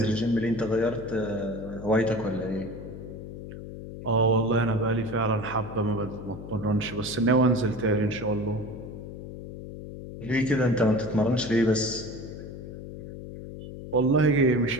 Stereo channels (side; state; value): left; noise; hum, 11 dB below the sound